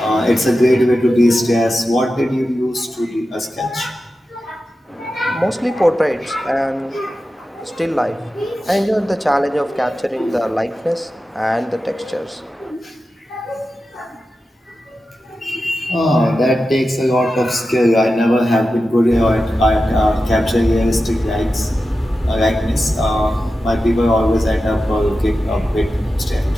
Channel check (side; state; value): both; normal; correlation 0.92